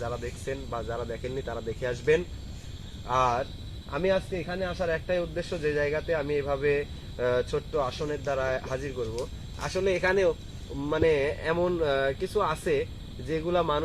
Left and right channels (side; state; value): both; identical; correlation 1.00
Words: যারা দেখছেন বা যারা দেখেননি তারা দেখে আসবেন। আর আমি আজকে এখানে আসার একটাই উদ্দেশ্য, যে জায়গাতে আমি এভাবে ছোট্ট আসনের দ্বারা হাজির করব। আসলে এখানেও মানে এমন কিছু আছে যেগুলা